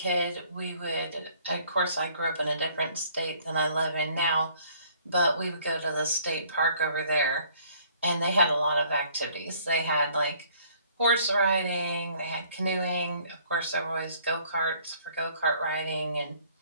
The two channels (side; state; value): both; inverted; correlation -0.59